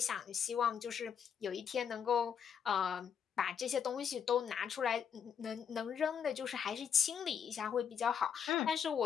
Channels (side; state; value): right; quieter; 7.6 dB